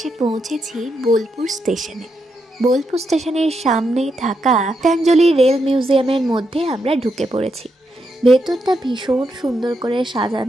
পৌঁছেছি বোলপুর স্টেশনে। বোলপুর স্টেশনের সামনেই থাকা গীতাঞ্জলি রেল মিউজিয়ামের মধ্যে আমরা ঢুকে পড়েছি। ভেতরটা ভীষণ সুন্দর করে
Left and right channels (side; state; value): both; normal; correlation 0.82